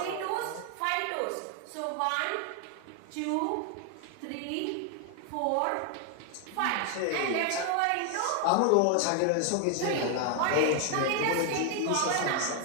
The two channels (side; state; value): both; different; correlation 0.00